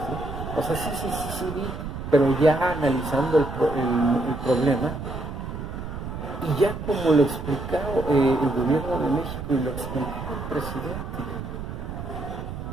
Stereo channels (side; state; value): right; noise; rumble, 7 dB below the sound